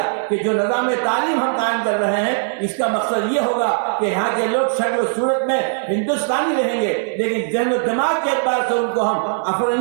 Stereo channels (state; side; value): silent; left; 58 dB below the other